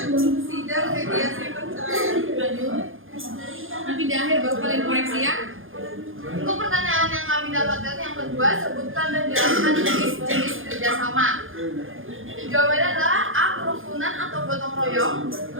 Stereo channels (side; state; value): left; late; 0.59 ms